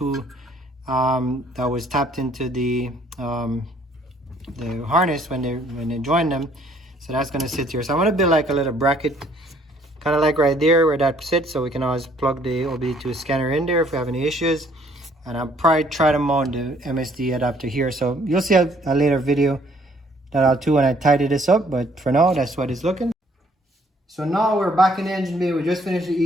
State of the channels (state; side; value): normal; both; correlation 0.62